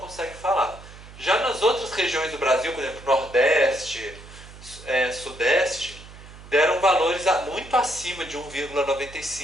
falar. Já nas outras regiões do Brasil, por exemplo, Nordeste, Sudeste, deram valores muito acima de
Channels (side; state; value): right; noise; hum, 18 dB below the sound